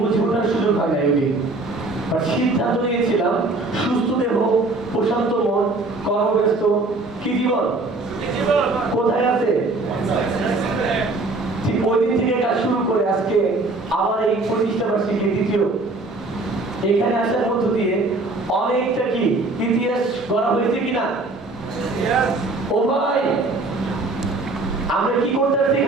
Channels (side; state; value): left; quieter; 3.2 dB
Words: ওঠার সুযোগ হয় না ওই দিন, আর সিদ্ধান্ত নিয়েছিলাম সুস্থ দেহ, প্রশান্ত মন, কর্মব্যস্ত কি জীবন কোথায় আছে। ঠিক ওই দিন থেকে কাজ শুরু করে আজকে আমার এই প্রতিষ্ঠা বার্ষিকী দ্বিতীয়, এখানে আসার মধ্য দিয়ে অনেকটা কি ইতিহাস গড়া হয়েছে কিনা। ও ভাই, আমরা কি করতে আসছি